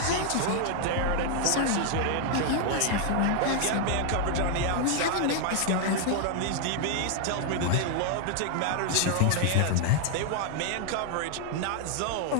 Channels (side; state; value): both; different; correlation 0.00